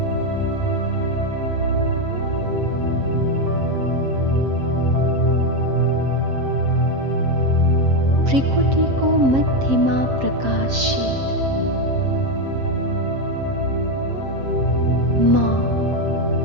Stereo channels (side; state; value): left; late; 7.5 ms